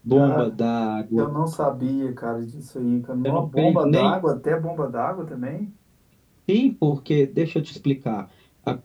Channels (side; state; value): both; identical; correlation 1.00